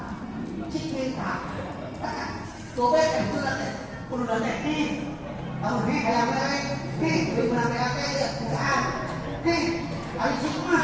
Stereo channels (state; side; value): identical; both; correlation 1.00